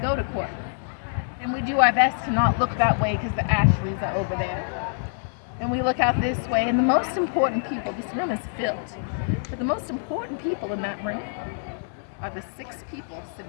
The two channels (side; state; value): right; silent; digital silence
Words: to court. And we do our best to not look that way because the Ashleys are over there. And we look out this way, and the most important people, this room is filled, but the most important people in that room are the 6 people